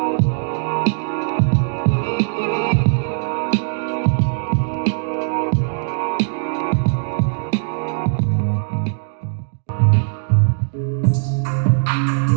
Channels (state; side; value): silent; left; digital silence